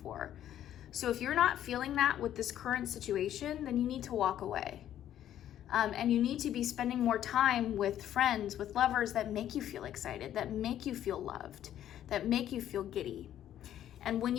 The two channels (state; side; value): quieter; right; 11.3 dB